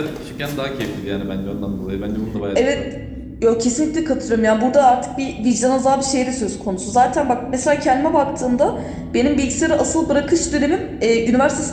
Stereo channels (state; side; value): identical; both; correlation 1.00